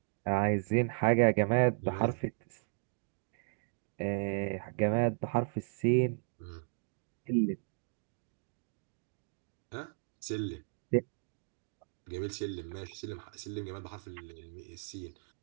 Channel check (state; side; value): silent; left; digital silence